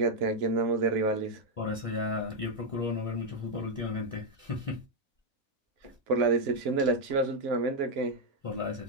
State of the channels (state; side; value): normal; both; correlation 0.00